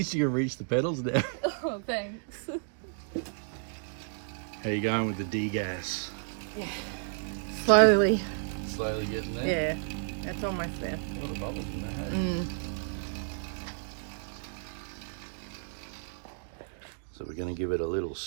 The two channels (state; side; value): silent; left; digital silence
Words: you can reach the pedals now. Oh, thanks. How you going with the D-gas? Yeah. Slowly. Slowly getting there? Yeah, that's almost there. A lot of bubbles in there, hey? So we're going to give it a little